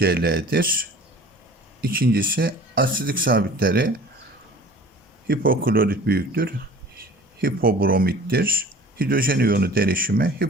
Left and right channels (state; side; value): normal; both; correlation 0.45